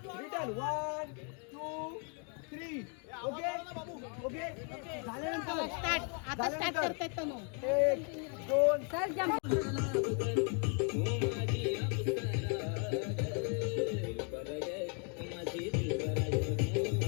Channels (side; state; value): right; quieter; 39.9 dB